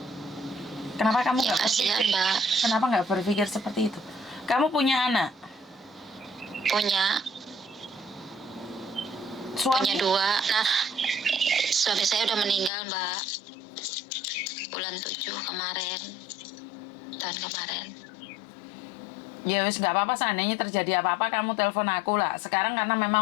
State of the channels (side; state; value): right; drops out; at 12.7 s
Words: Kenapa kamu Ya nggak kasihan, berpikir? Mbak. Kenapa nggak berpikir seperti itu? Kamu punya anak, Punya suami, 2. Nah, suami saya udah meninggal, Mbak. Bulan 7 kemarin. Tahun kemarin. ya wis nggak apa-apa, seandainya terjadi apa-apa kamu telepon aku lah. Sekarang karena